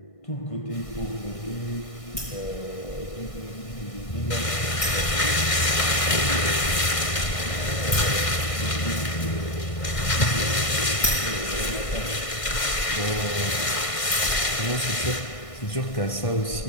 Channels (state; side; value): late; right; 1.6 ms